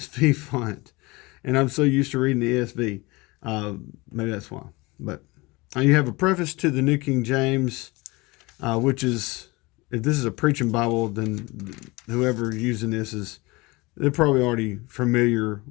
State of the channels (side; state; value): right; quieter; 23.7 dB